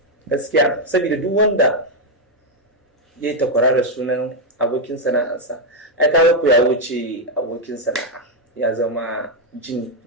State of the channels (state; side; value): normal; both; correlation 0.02